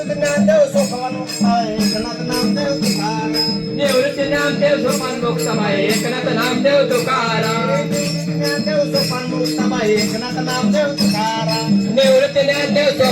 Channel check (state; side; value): identical; both; correlation 1.00